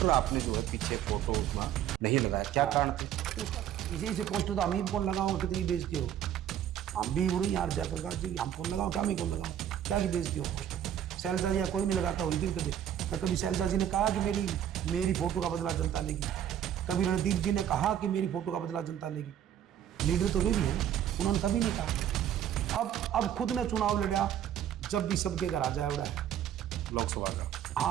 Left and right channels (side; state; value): left; quieter; 10.4 dB